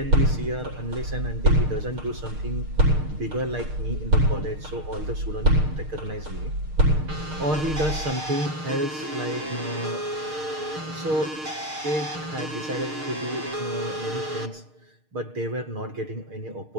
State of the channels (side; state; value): left; late; 6.5 ms